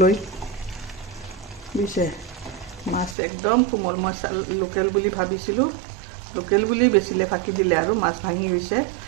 বুজিছে? মাছ একদম কোমল। মই লোকেল বুলি ভাবিছিলোঁ, লোকেল বুলি বেচিলে ফাঁকি দিলে আৰু মাছ ভাঙি গৈছে।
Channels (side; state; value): left; drops out; at 3.2 s